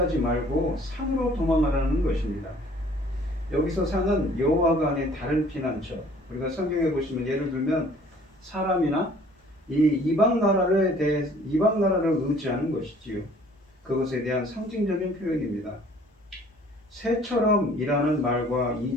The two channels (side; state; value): both; normal; correlation 0.55